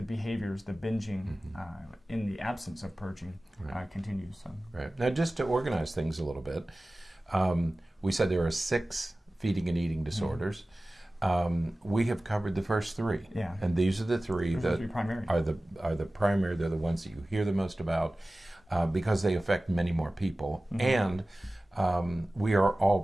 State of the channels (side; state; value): both; normal; correlation 0.97